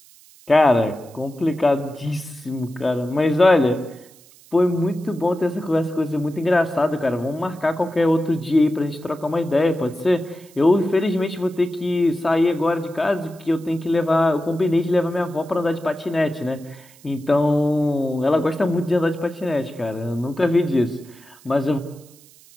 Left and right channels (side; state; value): right; noise; hiss, 25 dB below the sound